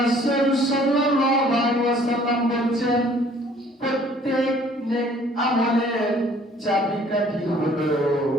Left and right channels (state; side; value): normal; both; correlation 0.57